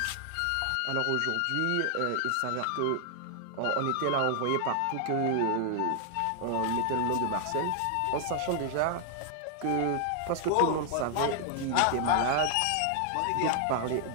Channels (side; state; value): both; different; correlation 0.00